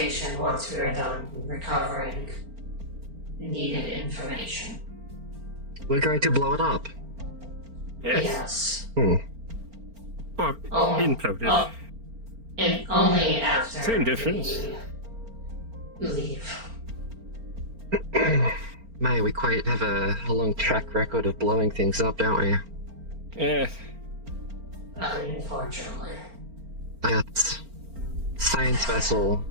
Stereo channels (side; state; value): left; late; 4.4 ms